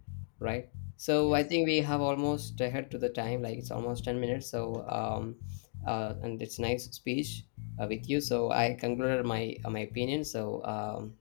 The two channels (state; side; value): silent; right; digital silence